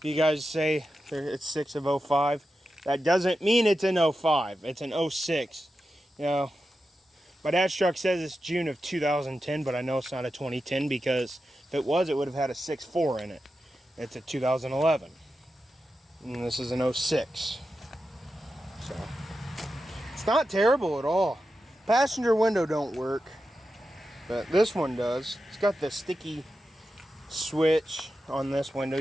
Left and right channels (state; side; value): normal; both; correlation 0.90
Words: you guys say it's 6 of 05, that doesn't mean it's in 05. It's in 06. You know, my dad's truck says it's June of 2010, but I know it's not a 2010 because if it was, it would have had a 6.4 in it. It's a 2011. And this is an 06. So, it's not terrible at all. Passenger window don't work, but this one does. It's got the sticky switch on this window.